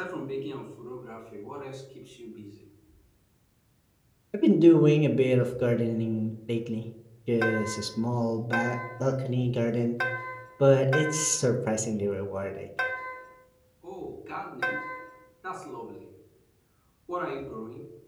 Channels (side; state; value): both; identical; correlation 1.00